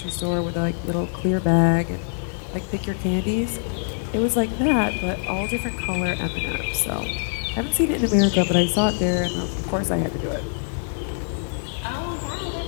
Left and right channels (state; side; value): silent; right; digital silence